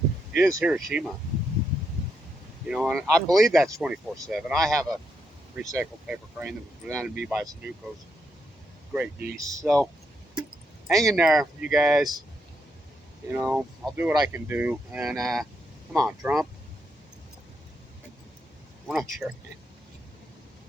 is Hiroshima. You know, and I believe that's 24/7. I have a recycled paper crane that was presented to me by Sudoku's great niece. So hang in there, you guys. You know, I'll do what I can do. And come on, Trump. We're not sure.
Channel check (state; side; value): normal; both; correlation 0.80